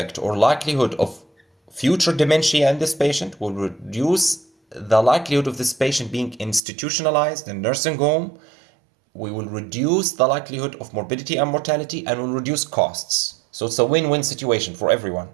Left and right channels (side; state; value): left; drops out; at 6.6 s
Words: or likelihood of future dementia in this patient, will reduce the likelihood of this patient being institutionalized in nursing home. We will reduce the likelihood of morbidity and mortality, and will reduce costs. So it's a win-win situation for everyone.